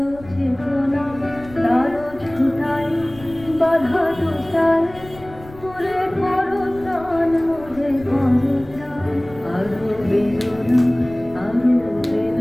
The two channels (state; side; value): noise; left; rumble, 19 dB below the sound